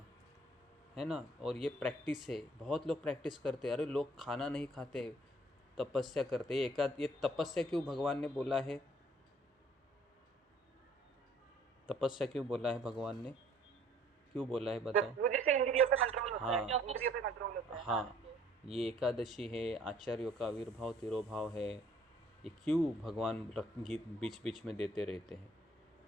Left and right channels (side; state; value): both; normal; correlation 0.58